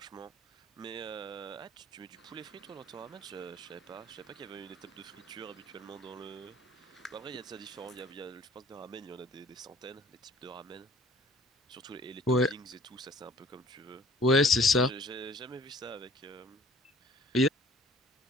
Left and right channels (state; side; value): normal; both; correlation 0.54